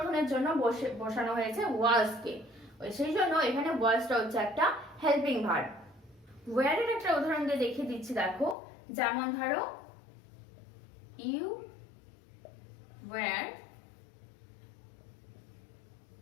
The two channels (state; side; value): drops out; right; at 8.6 s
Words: জন্য বসানো হয়েছে ওয়াজকে, সেই জন্য এখানে ওয়াজটা হচ্ছে একটা হেল্পিং ভার্ব। ওয়্যার এর একটা উদাহরণ দিয়ে দেখিয়ে দিচ্ছি, দেখো, যেমন ধরো ইউ ওয়্যার